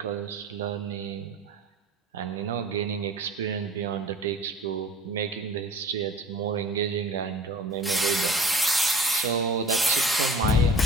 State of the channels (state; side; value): normal; both; correlation 0.44